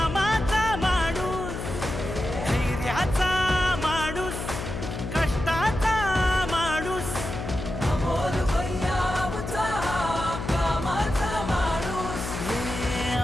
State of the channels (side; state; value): left; noise; hum, 6 dB below the sound